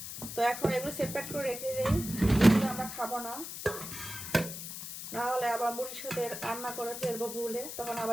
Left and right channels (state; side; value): noise; left; hiss, 8 dB below the sound